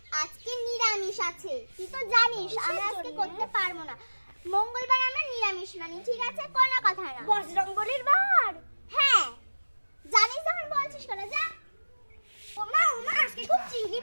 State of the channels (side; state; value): both; inverted; correlation -1.00